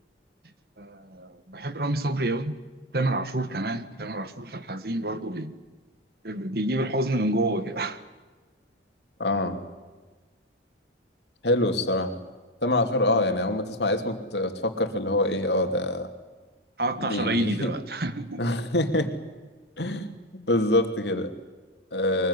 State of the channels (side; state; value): both; normal; correlation 0.12